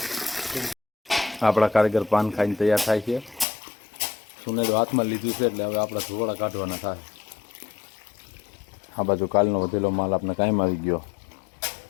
આપણા કારીગર પાન ખાઈને તૈયાર થાય છે. સુનેડો હાથમાં લીધું છે એટલે હવે આપણા ધોવાડા કાઢવાના થાય. આ બાજુ કાલનો વધેલો માલ આપણે કાયમ આવી ગયો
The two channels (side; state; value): right; drops out; at 3.5 s